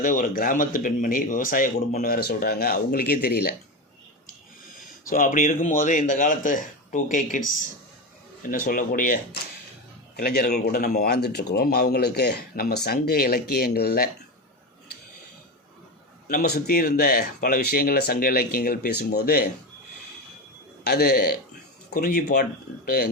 ஒரு கிராமத்து பெண்மணி, விவசாய குடும்பம்னு வேறு சொல்கிறாங்க, அவங்களுக்கே தெரியல. ஸோ அப்படி இருக்கும்போது இந்த காலத்து 2K கிட்ஸ் என்ன சொல்லக்கூடிய இளைஞர்கள் கூட நம்ம வாழ்ந்துட்டுருக்குறோம். அவங்களுக்கு நம்ம சங்க இலக்கியங்களில் நம்ம சுற்றி இருந்த பல விஷயங்களில் சங்க இலக்கியங்கள் பேசும்போது அது குறிஞ்சி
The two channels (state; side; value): normal; both; correlation 0.19